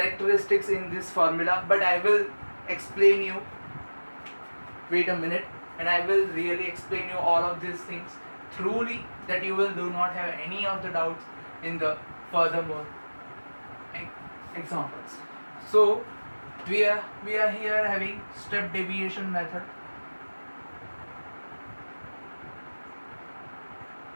in this formula, but I will explain you. Wait a minute, and I will really explain you all of these things thoroughly, that you will do not have any of the doubts in the furthermore examples. So we are here having step deviation method.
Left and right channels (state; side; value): inverted; both; correlation -1.00